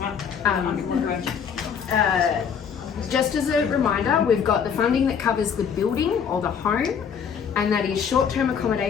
Just as a reminder, we've got the funding that covers the building or the home, and that is short-term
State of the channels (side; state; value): right; quieter; 7.2 dB